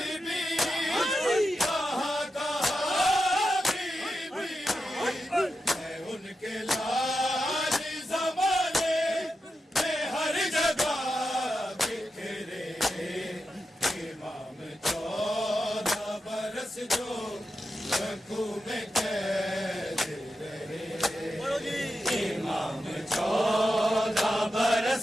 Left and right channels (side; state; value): both; normal; correlation 0.89